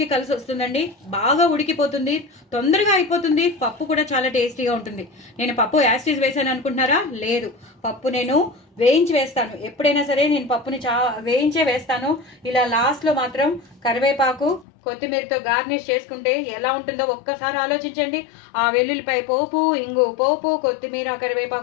కలిసి వస్తుందండి. బాగా ఉడికిపోతుంది, తొందరగా అయిపోతుంది, పప్పు కూడా చాలా టేస్టీగా ఉంటుంది. నేను పప్పు యాస్టీస్ వేసాను అనుకుంటున్నారా? లేదు, పప్పు నేను వేయించి వేస్తాను. ఎప్పుడైనా సరే నేను పప్పుని వేయించే వేస్తాను. ఇలా లాస్ట్లో మాత్రం కరివేపాకు కొత్తిమీరతో గార్నిష్ చేసుకుంటే ఎలా ఉంటుందో ఒక్కసారి ఆలోచించండి. ఆ వెల్లుల్లిపాయ పోపు, ఇంగు పోపు, కొత్తిమీర,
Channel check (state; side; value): drops out; right; at 14.7 s